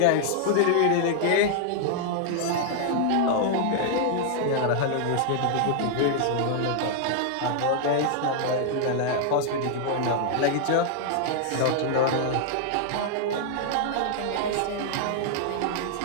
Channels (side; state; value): both; different; correlation -0.01